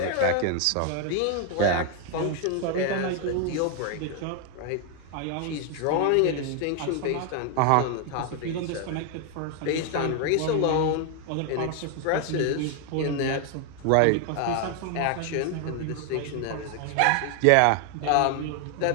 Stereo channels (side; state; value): both; different; correlation 0.00